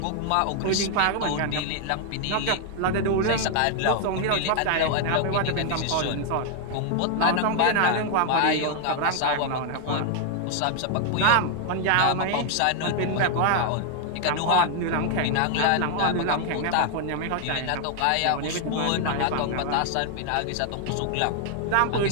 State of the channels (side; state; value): both; different; correlation 0.00